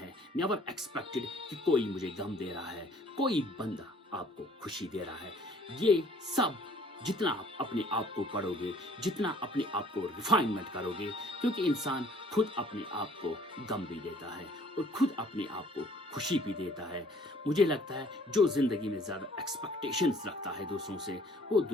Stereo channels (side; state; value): both; normal; correlation 0.56